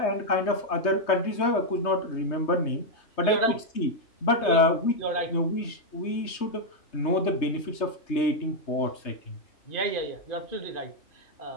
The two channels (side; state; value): right; late; 3.2 ms